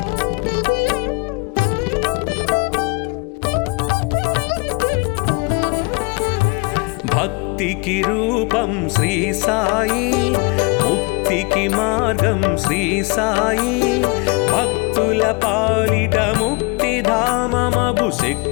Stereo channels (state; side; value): quieter; right; 28.9 dB